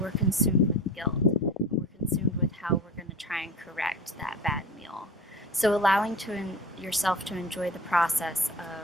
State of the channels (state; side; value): normal; both; correlation 0.35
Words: consumed with guilt. We're consumed with how we're going to try and correct that bad meal. So allowing yourself to enjoy the process